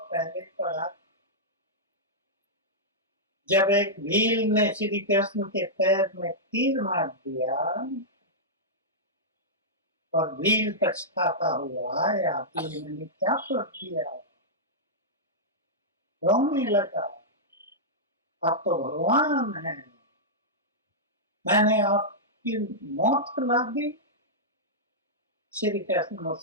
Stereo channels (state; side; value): normal; both; correlation -0.11